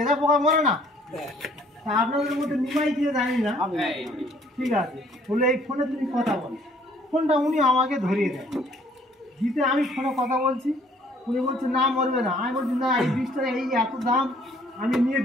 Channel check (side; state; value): both; normal; correlation 0.60